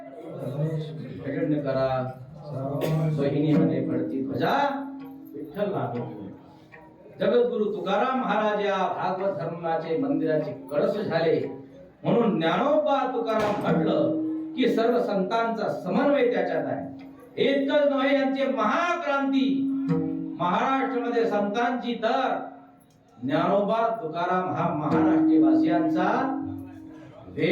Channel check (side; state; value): both; identical; correlation 1.00